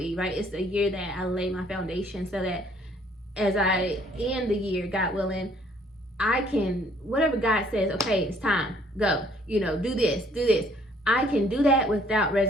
right? It's a year that I lay my foundation, so that as I end the year, God willing, I can, whatever God says, okay, it's time, go, do this. I can do that without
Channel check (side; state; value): both; normal; correlation 0.62